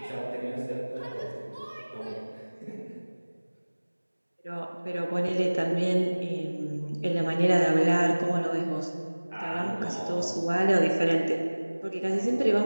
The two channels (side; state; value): both; inverted; correlation -1.00